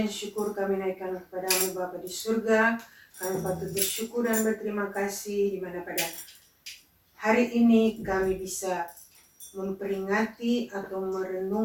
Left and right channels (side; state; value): both; identical; correlation 1.00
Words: syukur kami naikkan kepadamu Bapa di surga. Kami patut bersyukur dan berterima kasih di mana pada hari ini kami bisa memperingati atau